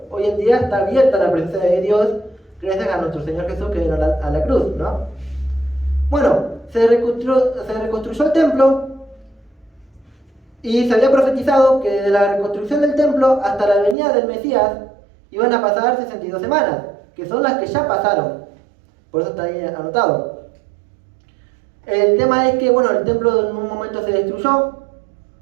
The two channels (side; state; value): left; drops out; at 14.0 s